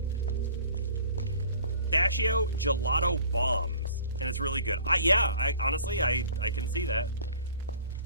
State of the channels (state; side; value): inverted; both; correlation -0.49